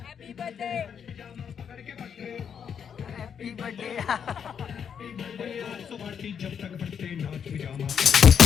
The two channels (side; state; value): right; quieter; 7.6 dB